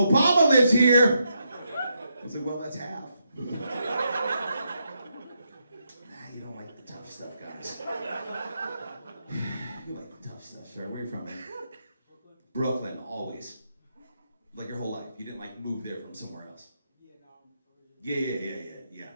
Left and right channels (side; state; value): both; inverted; correlation -0.81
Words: lives here!" I was like, "Well, that's half." You don't like the tough stuff, guys. You like the tough stuff, sir. Where are you from, man? Brooklyn, always. Like your whole life. You didn't like move there from somewhere else. Yeah.